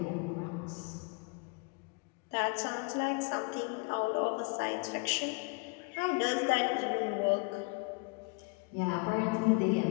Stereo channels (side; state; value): right; quieter; 31.7 dB